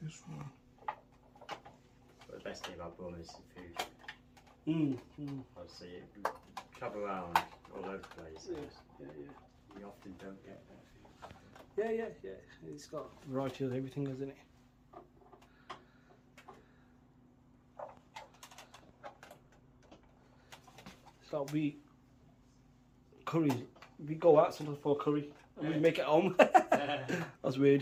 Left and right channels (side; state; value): both; identical; correlation 1.00